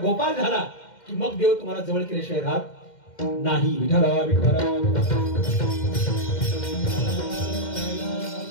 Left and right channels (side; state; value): right; late; 2.1 ms